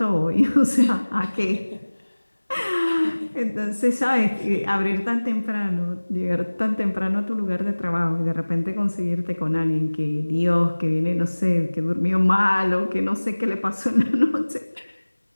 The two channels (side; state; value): both; inverted; correlation -1.00